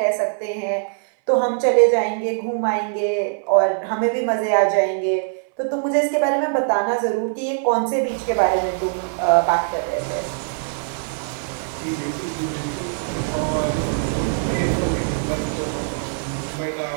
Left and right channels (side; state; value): left; silent; 60 dB below the other